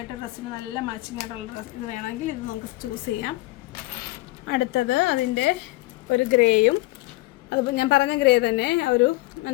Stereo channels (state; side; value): quieter; right; 20.2 dB